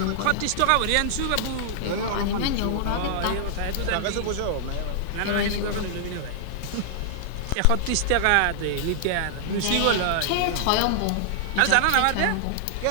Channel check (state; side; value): different; both; correlation -0.01